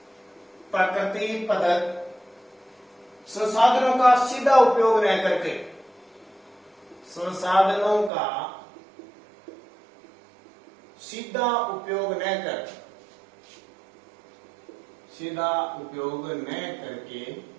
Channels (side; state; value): left; drops out; at 8.1 s